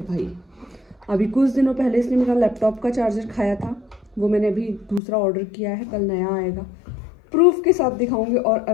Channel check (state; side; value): drops out; right; at 5.0 s